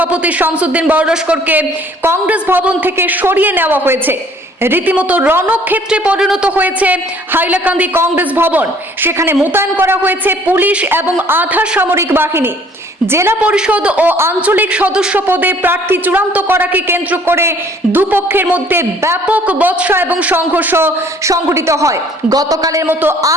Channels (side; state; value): both; normal; correlation 0.57